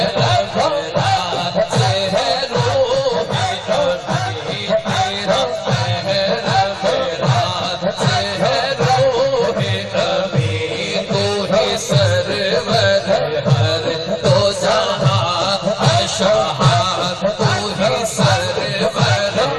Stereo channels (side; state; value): both; identical; correlation 1.00